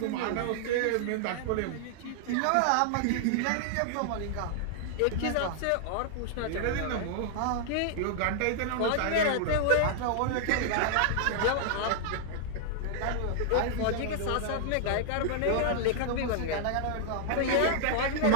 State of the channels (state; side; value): different; both; correlation 0.00